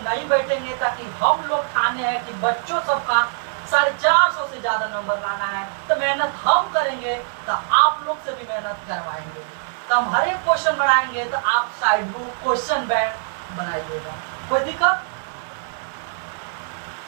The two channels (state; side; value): silent; left; digital silence